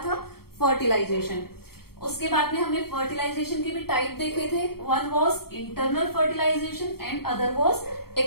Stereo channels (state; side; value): late; right; 0.94 ms